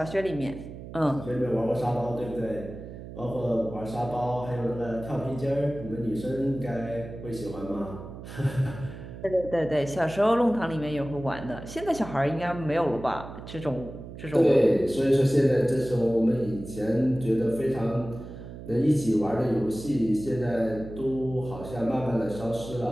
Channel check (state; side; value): noise; right; hum, 12 dB below the sound